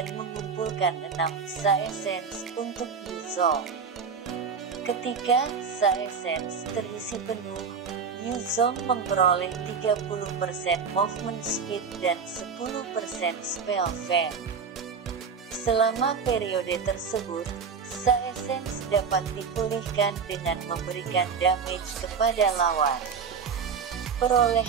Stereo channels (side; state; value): left; quieter; 5.9 dB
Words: mengumpulkan 6 Sa Essence untuk Yuzong. Ketika Sa Essence terisi penuh, Yuzong memperoleh 30% movement speed dan 10% spell fam. Selama periode tersebut, Sa Essence dapat dipulihkan dengan memberikan damage kepada lawan.